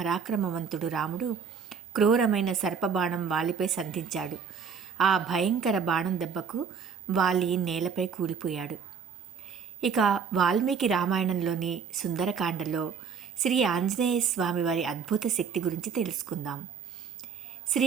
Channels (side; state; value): left; quieter; 6.4 dB